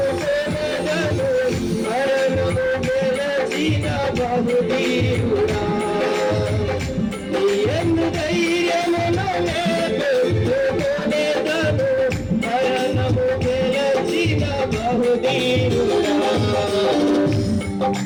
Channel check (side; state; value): both; identical; correlation 1.00